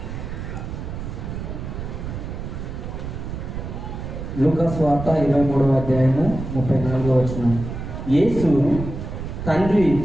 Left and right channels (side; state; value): right; noise; rumble, 7 dB below the sound